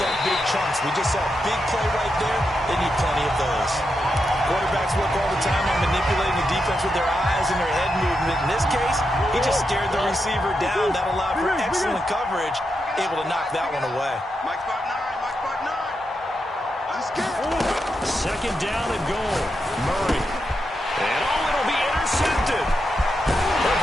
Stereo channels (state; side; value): normal; both; correlation 0.85